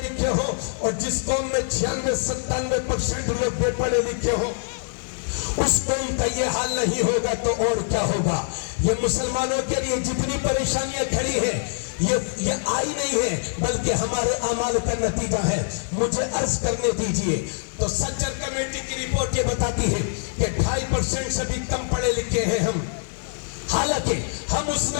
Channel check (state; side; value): silent; right; digital silence